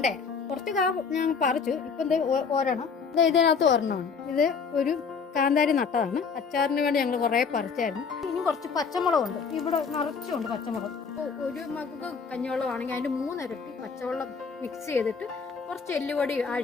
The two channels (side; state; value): right; quieter; 5.6 dB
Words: കുറച്ച് ഞാൻ പറിച്ചു. ഇപ്പം ഒരെണ്ണം ഇതിനകത്ത് ഒരെണ്ണമാണ്. ഇത് ഒരു കാന്താരി നട്ടതാണ്. അച്ചാറിന് വേണ്ടി ഞങ്ങൾ കുറെ പറിച്ചായിരുന്നു. ഇനി കുറച്ച് പച്ചമുളകുണ്ട്. ഇവിടെ നിറച്ചുണ്ട് പച്ചമുളക്. ഒരു മകൾക്ക് കഞ്ഞിവെള്ളമാണെങ്കിൽ അതിന്റെ 3 ഇരട്ടി പച്ചവെള്ളം മിക്സ് ചെയ്തിട്ട് കുറച്ച് എല്ലുപൊടി